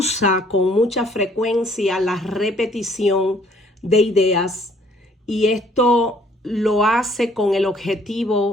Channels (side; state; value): both; normal; correlation 0.61